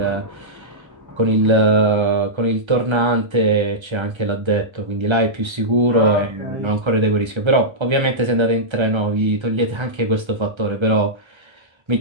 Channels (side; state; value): left; late; 1.3 ms